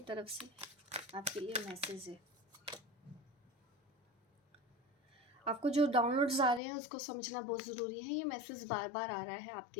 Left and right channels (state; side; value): drops out; right; at 6.6 s